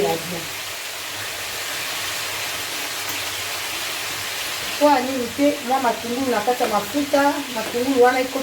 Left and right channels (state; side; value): identical; both; correlation 1.00